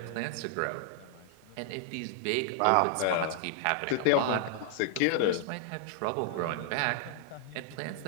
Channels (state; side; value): different; both; correlation 0.00